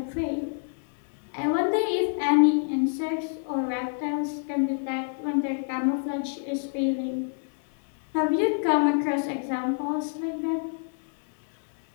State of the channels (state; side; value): silent; right; 60 dB below the other